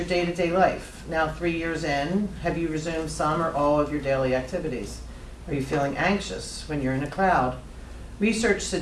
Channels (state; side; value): identical; both; correlation 1.00